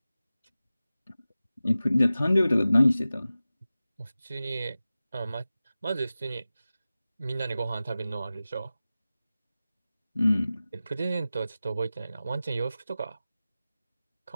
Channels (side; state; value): both; inverted; correlation -0.95